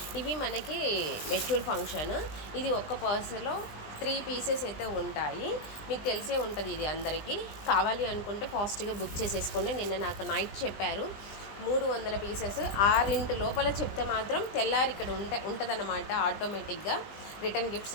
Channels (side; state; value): right; late; 20 ms